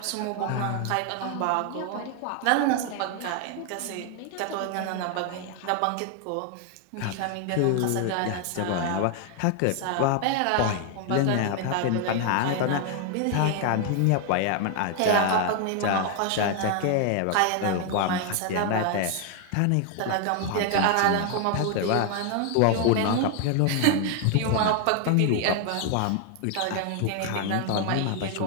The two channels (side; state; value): both; different; correlation 0.00